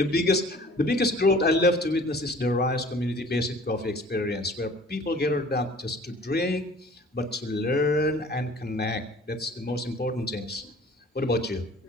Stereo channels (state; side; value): normal; both; correlation 0.49